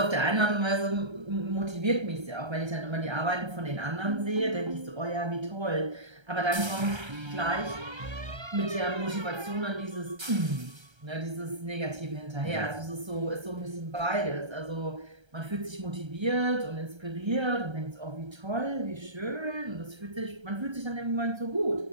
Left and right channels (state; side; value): late; left; 1.3 ms